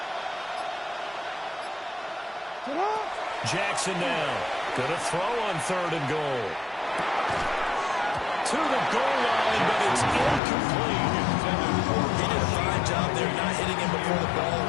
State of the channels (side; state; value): right; drops out; at 10.4 s